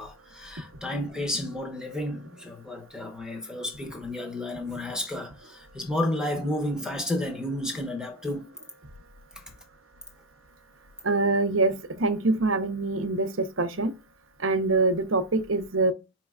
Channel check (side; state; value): both; normal; correlation 0.10